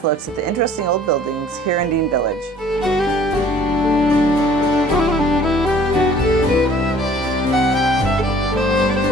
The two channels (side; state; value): both; normal; correlation 0.54